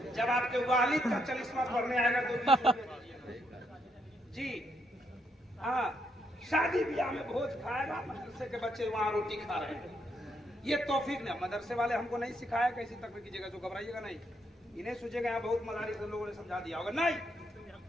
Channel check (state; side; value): normal; both; correlation 0.76